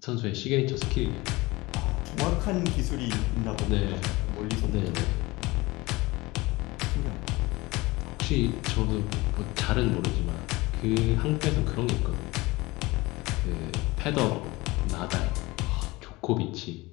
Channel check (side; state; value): right; quieter; 21.7 dB